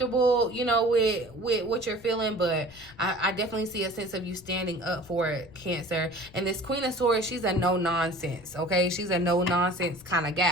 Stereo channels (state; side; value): noise; left; rumble, 22 dB below the sound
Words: you know, with what you're feeling, but I definitely see a sense of you standing up for it, Cancer. And this Queen of Swords, she's a no nonsense, okay? She's a no nonsense kind of